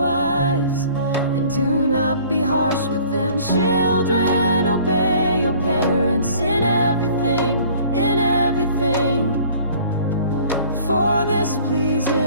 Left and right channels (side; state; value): both; inverted; correlation -0.52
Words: and do not be harsh with them. Children, obey your parents in everything, in everything. For this